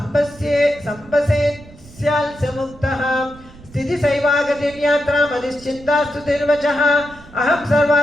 स्थितिसैवागतिर्यात्रामधिश्चिन्तास्तु तिर्वचः अहं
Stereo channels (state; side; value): noise; right; rumble, 21 dB below the sound